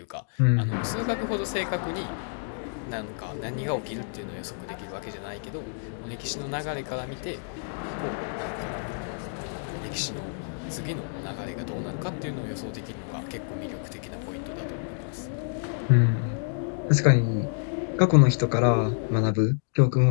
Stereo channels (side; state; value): right; silent; digital silence